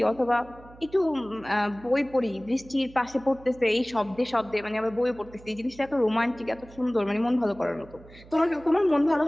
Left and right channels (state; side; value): noise; right; hum, 21 dB below the sound